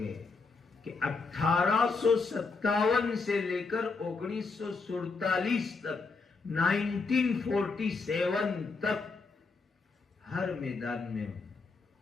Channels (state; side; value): quieter; right; 4.3 dB